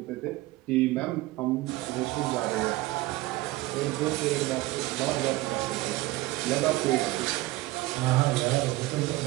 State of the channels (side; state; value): left; quieter; 18.8 dB